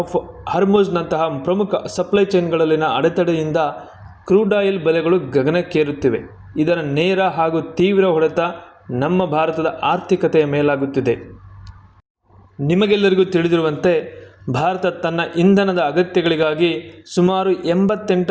ಹಾರ್ಮುಜ್ನಂತಹ ಪ್ರಮುಖ ಸಪ್ಲೈ ಚೈನ್ಗಳಲ್ಲಿನ ಅಡೆತಡೆಯಿಂದ ಕ್ರೂಡ್ ಆಯಿಲ್ ಬೆಲೆಗಳು ಗಗನಕ್ಕೇರುತ್ತಿವೆ. ಇದರ ನೇರ ಹಾಗೂ ತೀವ್ರ ಹೊಡೆತ ನಮ್ಮ ಭಾರತದ ಆರ್ಥಿಕತೆಯ ಮೇಲಾಗುತ್ತಿದೆ. ನಿಮಗೆಲ್ಲರಿಗೂ ತಿಳಿದಿರುವಂತೆ ಭಾರತ ತನ್ನ ಇಂಧನದ ಅಗತ್ಯಗಳಿಗಾಗಿ ಸುಮಾರು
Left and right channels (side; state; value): both; identical; correlation 1.00